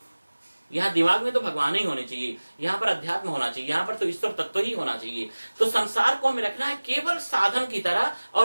यहाँ दिमाग में तो भगवान ही होने चाहिए, यहाँ पर अध्यात्म होना चाहिए, यहाँ पर तो ईश्वर तत्व ही होना चाहिए। तो संसार को हमें रखना है केवल साधन की तरह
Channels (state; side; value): inverted; both; correlation -1.00